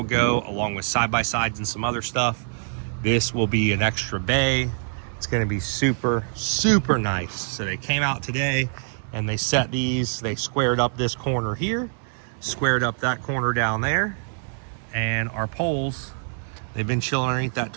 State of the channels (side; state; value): left; silent; digital silence